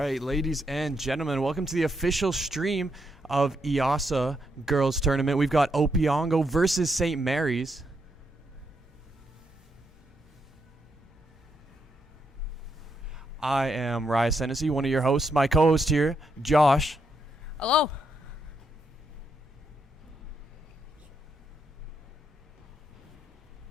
ladies and gentlemen, welcome to the official stream of Eossaa Girls Tournament. We've got Opeongo versus St. Mary's. I am Ryan Hennessy, one of your hosts. My co-host here, Josh. Hello.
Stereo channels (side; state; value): both; normal; correlation 0.79